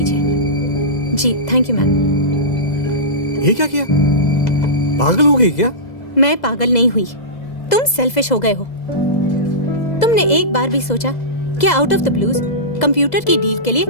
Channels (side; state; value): right; late; 2.0 ms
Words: जी, थैंक यू मैम। ये क्या किया? पागल हो गई क्या? मैं पागल नहीं हुई, तुम सेल्फिश हो गए हो। तुमने एक बार भी सोचा कि out of the blues computer की डील के लिए